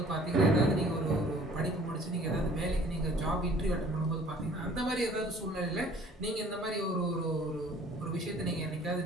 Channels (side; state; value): both; normal; correlation 0.53